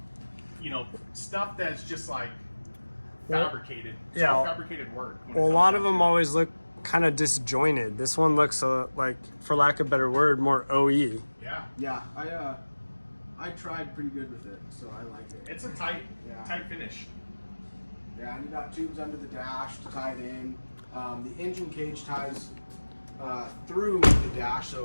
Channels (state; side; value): inverted; both; correlation -1.00